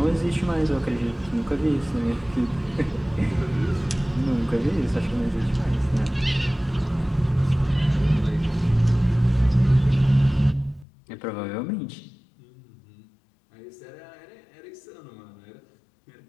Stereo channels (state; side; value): drops out; right; at 10.9 s